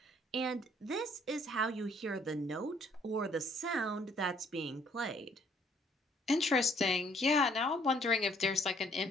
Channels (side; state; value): both; normal; correlation 0.63